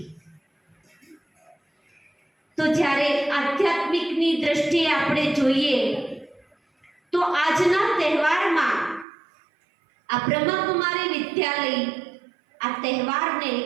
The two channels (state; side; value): drops out; left; at 9.1 s